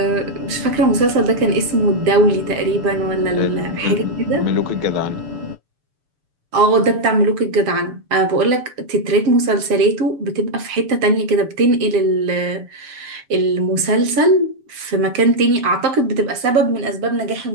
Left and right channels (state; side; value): late; left; 6.9 ms